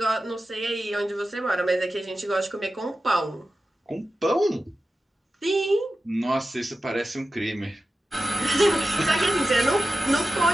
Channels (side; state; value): both; normal; correlation 0.93